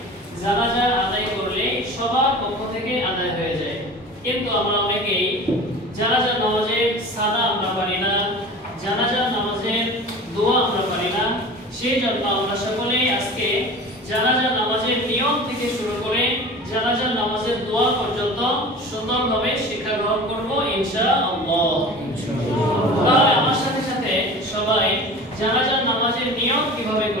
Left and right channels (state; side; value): normal; both; correlation 0.37